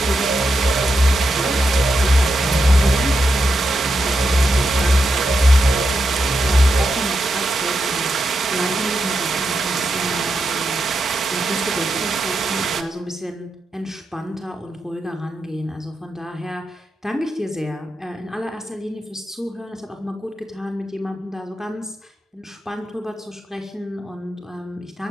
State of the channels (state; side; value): normal; both; correlation 0.86